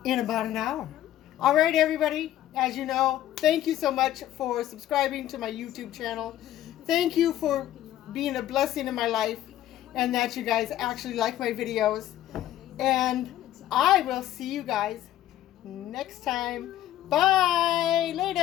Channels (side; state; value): right; quieter; 12.9 dB